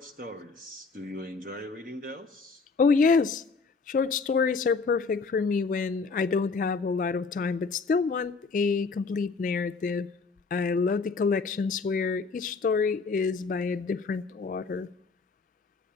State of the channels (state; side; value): quieter; right; 4.5 dB